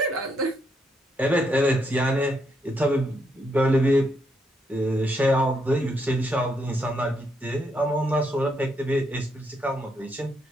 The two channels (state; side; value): normal; both; correlation 0.77